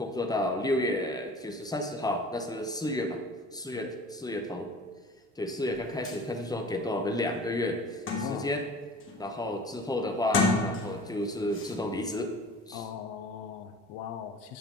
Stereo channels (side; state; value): both; normal; correlation 0.43